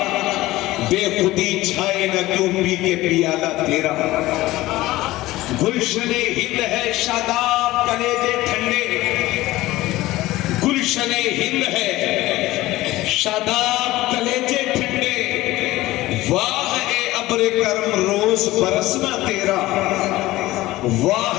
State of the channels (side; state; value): right; quieter; 17.6 dB